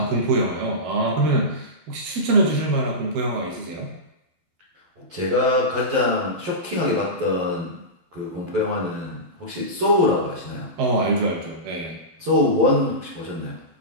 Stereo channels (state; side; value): late; left; 12 ms